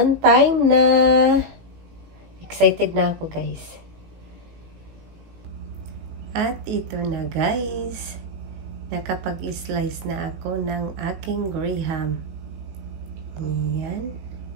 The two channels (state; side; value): late; left; 18 ms